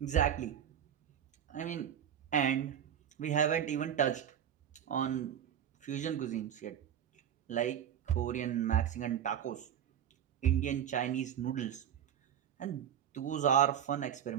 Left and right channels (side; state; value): left; quieter; 9.5 dB